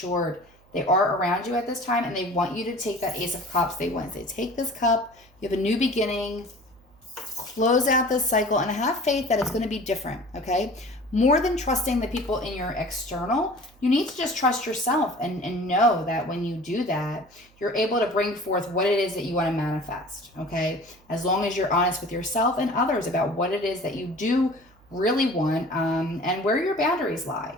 they are around you at this time, and they want you to take that Ace of Cups. They want to say, take this cup, you have a new beginning, close out this cycle, and have faith that it's going to be different, okay? More than trusting the people in your external, you need to just trust yourself and know that when you do that, you're able to bring forth what it is that you want to manifest, okay? As long as you're honest with yourself and others about what it is that you do really want, and where your boundaries lie.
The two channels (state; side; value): noise; right; hum, 30 dB below the sound